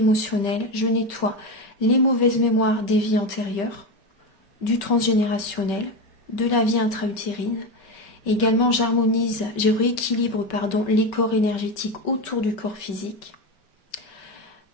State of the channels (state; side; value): late; right; 5.2 ms